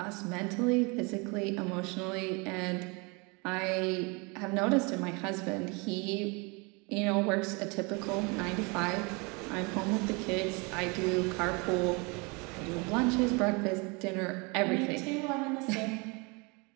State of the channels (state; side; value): quieter; left; 29.5 dB